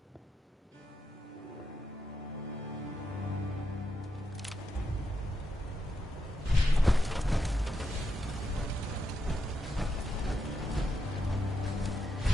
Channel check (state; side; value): normal; both; correlation 0.84